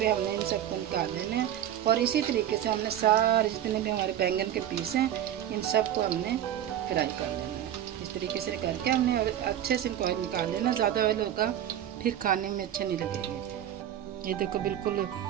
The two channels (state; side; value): quieter; left; 11.1 dB